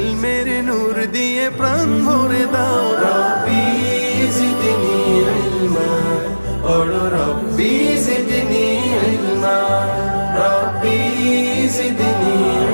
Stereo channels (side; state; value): both; inverted; correlation -1.00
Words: নূর দিয়ে প্রাণ ভরে দাও। রব্বি জিদনি ইলমা, পড়ো রব্বি জিদনি ইলমা। রব্বি জিদনি